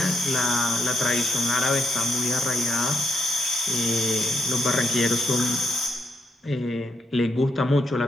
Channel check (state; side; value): normal; both; correlation 0.77